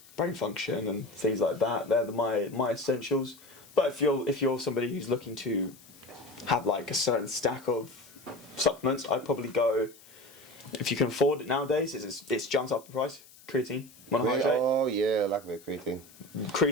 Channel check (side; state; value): left; noise; hiss, 23 dB below the sound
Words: Brain function and things like that. They're my essentials. But if you're somebody who's looking to have a certain stack of supplements, I'd probably go, if you can afford it nowadays, it's jumped up in price. Creatine monohydrate. Oh yeah, I like a bit of creatine.